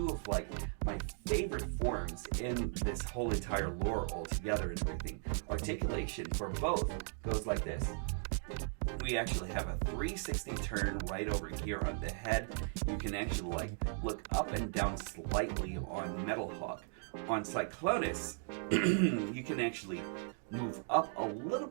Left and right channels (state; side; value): silent; left; 53 dB below the other